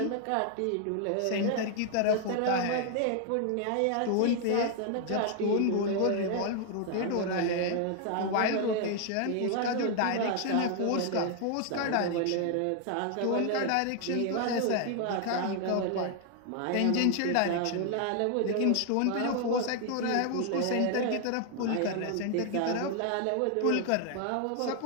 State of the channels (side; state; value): both; different; correlation 0.00